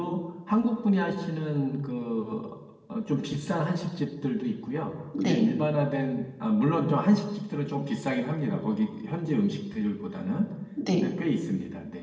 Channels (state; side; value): identical; both; correlation 1.00